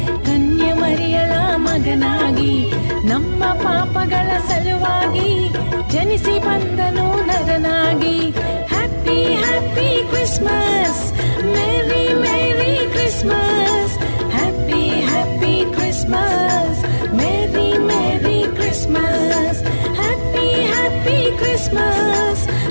ಕನ್ಯೆ ಮರಿಯಳ ಮಗನಾಗಿ ನಮ್ಮ ಪಾಪಗಳ ಸಲುವಾಗಿ ಜನಿಸಿ ಬಂದನು ನರನಾಗಿ. Happy happy Christmas, merry merry Christmas. Happy happy Christmas, merry merry Christmas. Happy happy Christmas,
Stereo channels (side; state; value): both; inverted; correlation -1.00